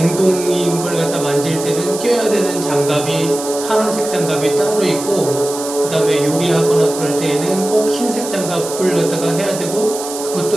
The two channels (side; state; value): right; noise; hiss, 9 dB below the sound